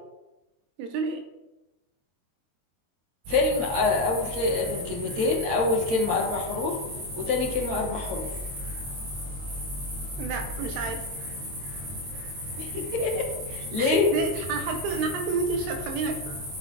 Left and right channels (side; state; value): left; late; 22 ms